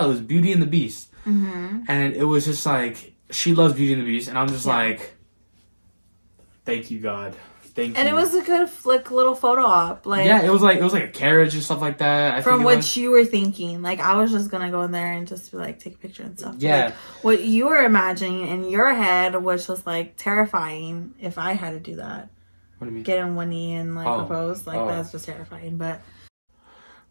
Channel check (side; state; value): both; inverted; correlation -1.00